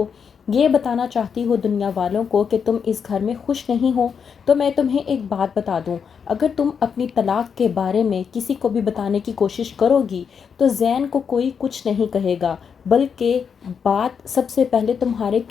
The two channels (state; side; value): quieter; right; 6.7 dB